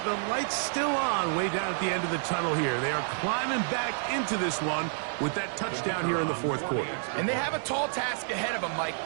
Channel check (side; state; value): left; silent; digital silence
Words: the light's still on way down at the end of the tunnel here. They are climbing back into this one with that touchdown here in the fourth quarter. And they have a tall task ahead of them, Mike,